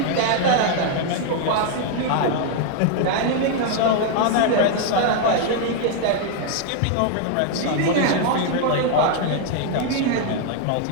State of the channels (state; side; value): different; both; correlation 0.00